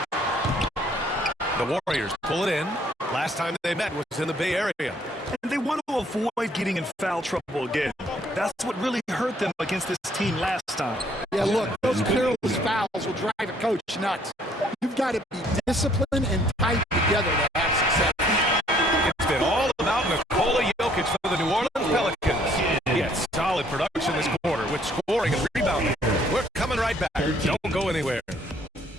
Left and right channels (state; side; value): normal; both; correlation 0.63